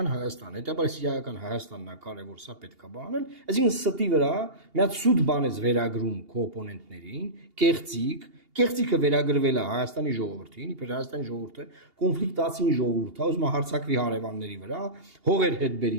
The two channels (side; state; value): left; late; 2.8 ms